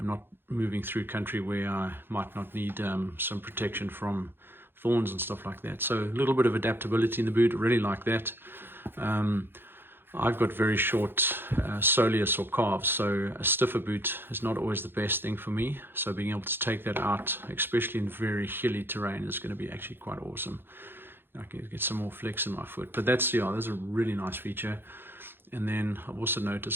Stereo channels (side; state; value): left; late; 0.10 ms